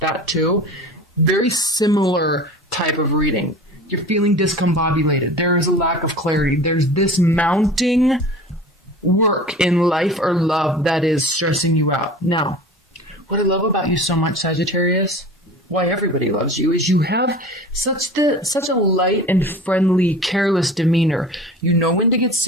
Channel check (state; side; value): normal; both; correlation 0.38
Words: too. Very similar type of reading. You're feeling discombobulated. There is a lack of clarity. There's this mounting work in life or love that is stressing you out. Now, what I love about you so much, Sagittarius, why everybody loves you, is you have such a light and friendly, careless demeanor. You know when to get